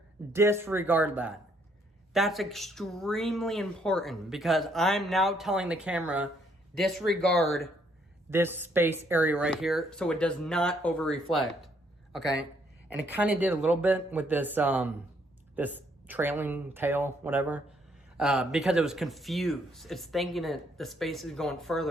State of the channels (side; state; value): both; normal; correlation 0.69